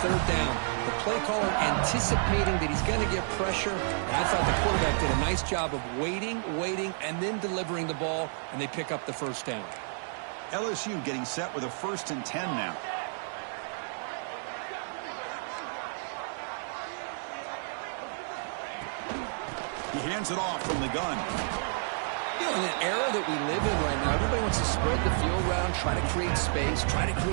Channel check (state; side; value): silent; left; digital silence